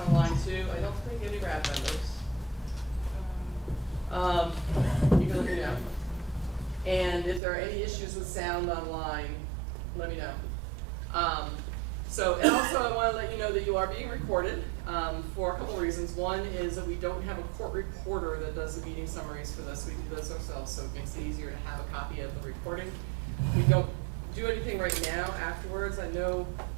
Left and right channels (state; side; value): drops out; left; at 7.4 s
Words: too. I don't think any RAB members. You can let me know. And if there are any issues with sound online, let me know. And also I want to let you know that you are being recorded for a couple of reasons. One is that we don't have a court reporter that does the meeting summaries for this. We do this ourselves, so it makes it easier to have a copy of the recording. We don't do anything right now afterwards. I know